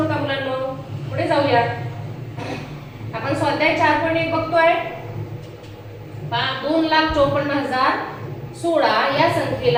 मुलांनो. पुढे जाऊया. आपण स्वाध्याय 4.1 बघतोय. 2,54,016 या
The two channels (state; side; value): identical; both; correlation 1.00